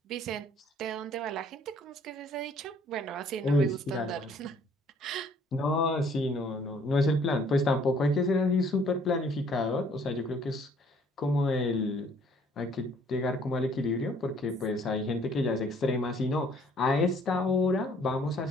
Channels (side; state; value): both; normal; correlation 0.60